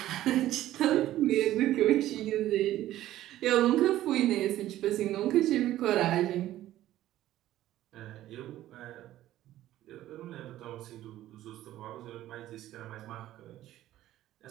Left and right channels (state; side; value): quieter; left; 14.0 dB